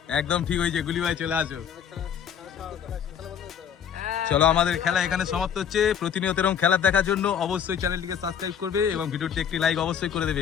একদম ঠিক হয়েছে, গুলি ভাই চলে আসো। চলো আমাদের খেলা এখানে সমাপ্ত হচ্ছে। প্রতিনিয়ত এরকম খেলা দেখার জন্য অবশ্যই চ্যানেলটিকে সাবস্ক্রাইব করবে এবং ভিডিওটি একটি লাইক অবশ্যই করে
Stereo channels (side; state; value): right; quieter; 8.3 dB